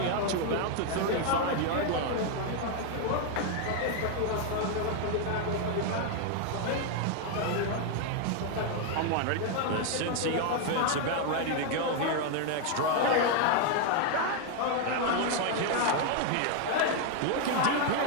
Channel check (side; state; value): both; different; correlation 0.01